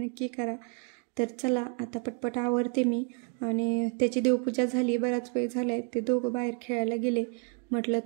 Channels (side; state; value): left; quieter; 35.7 dB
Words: करा. तर चला आता पटपट आवरते मी. आणि त्याची देवपूजा झाली, बराच वेळ झाला आहे. ते दोघं बाहेर खेळायला गेले, म्हटलं